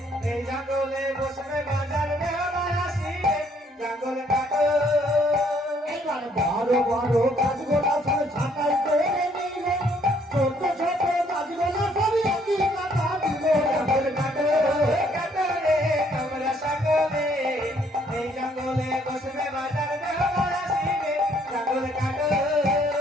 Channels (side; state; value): both; normal; correlation 0.65